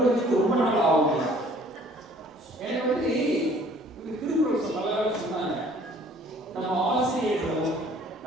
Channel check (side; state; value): both; normal; correlation 0.55